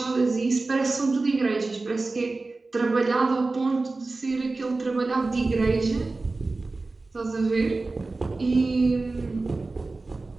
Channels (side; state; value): left; quieter; 3.5 dB